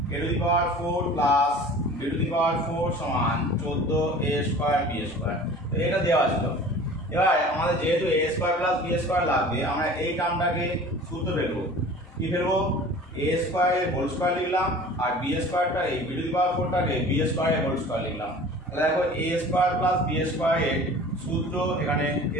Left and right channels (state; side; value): normal; both; correlation 0.43